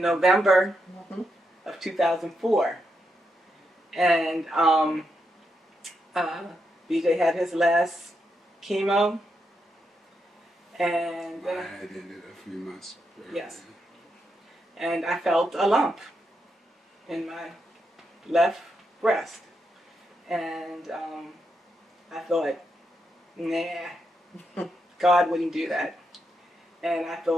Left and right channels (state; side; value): normal; both; correlation 0.83